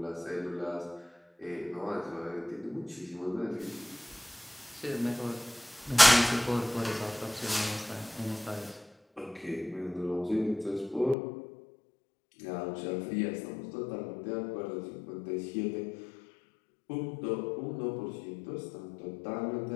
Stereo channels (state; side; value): drops out; right; at 11.2 s